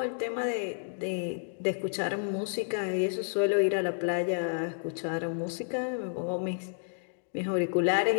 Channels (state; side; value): silent; right; digital silence